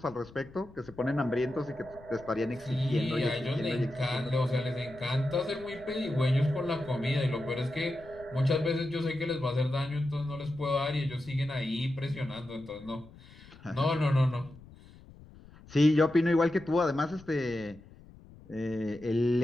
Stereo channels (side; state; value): left; noise; rumble, 21 dB below the sound